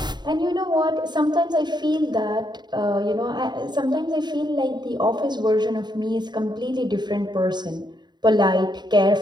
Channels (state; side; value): late; left; 0.21 ms